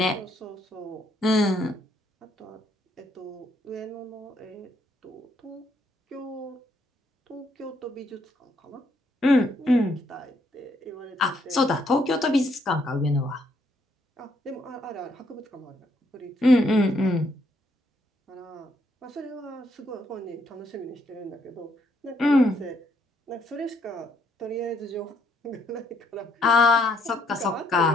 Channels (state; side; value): normal; both; correlation 0.72